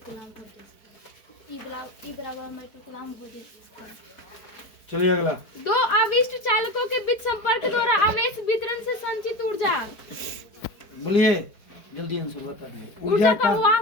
कूलम वोल्टेज। E बराबर 1/2 कूलम वोल्टेज। चलिए अगला। दो आविष्ट चालकों के बीच संपर्क द्वारा आवेश वितरण से संचित ऊर्जा। बोलिए जल्दी आंसर बता दीजिए। ऊर्जा का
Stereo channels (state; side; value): late; right; 4.5 ms